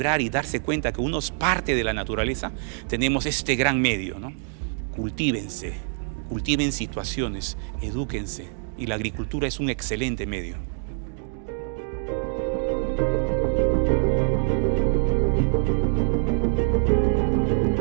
y darse cuenta que uno es parte de la naturaleza, tenemos este gran medio, ¿no? Cultívense, cultiven situaciones, edúquense, y la agricultura es un excelente medio.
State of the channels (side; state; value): left; silent; 55 dB below the other